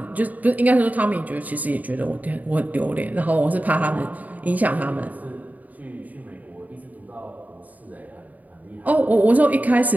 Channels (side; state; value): left; late; 0.077 ms